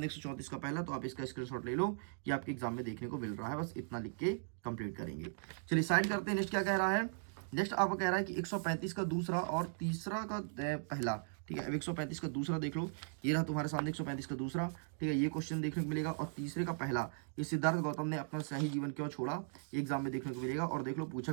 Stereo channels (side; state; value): left; silent; digital silence